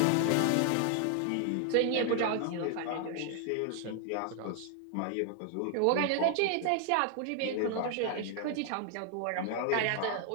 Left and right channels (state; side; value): different; both; correlation 0.00